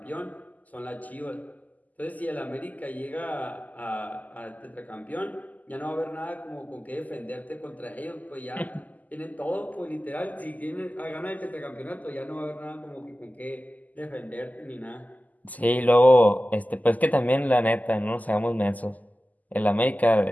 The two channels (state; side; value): late; right; 0.079 ms